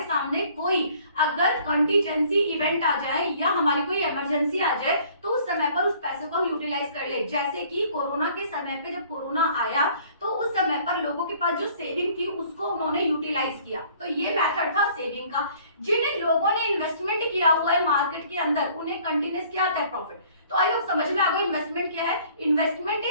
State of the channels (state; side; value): inverted; both; correlation -0.56